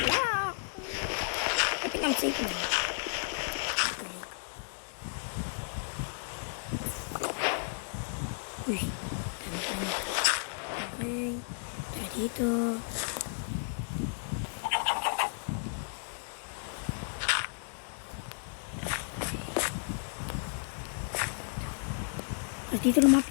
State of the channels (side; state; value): right; silent; digital silence